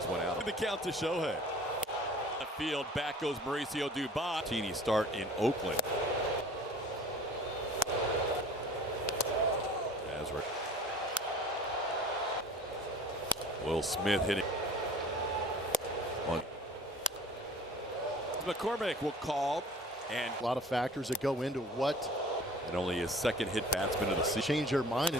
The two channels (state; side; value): normal; both; correlation 0.46